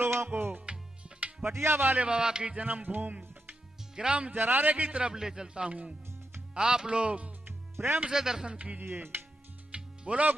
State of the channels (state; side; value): normal; both; correlation 0.85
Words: को पटिया वाले बाबा की जन्म भूमि ग्राम जरारे की तरफ ले चलता हूँ। आप लोग प्रेम से दर्शन कीजिए। बोलो